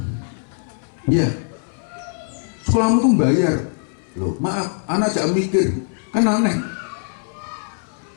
Iya, sekolahmu tuh bayar, loh, maaf, anak jangan mikir, kan aneh,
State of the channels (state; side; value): silent; right; 61 dB below the other